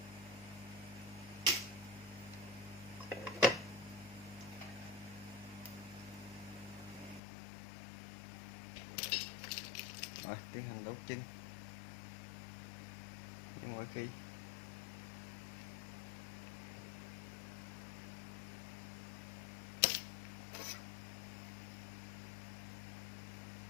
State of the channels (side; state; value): right; drops out; at 7.2 s